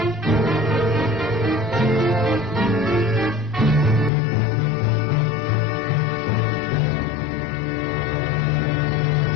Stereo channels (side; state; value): right; drops out; at 4.1 s